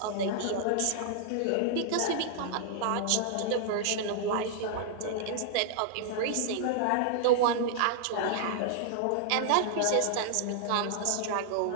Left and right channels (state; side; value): different; both; correlation -0.01